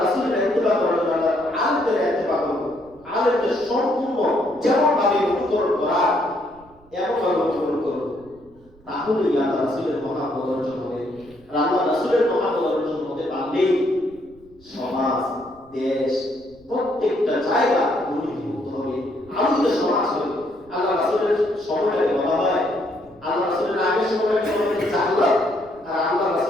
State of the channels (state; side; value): noise; right; rumble, 28 dB below the sound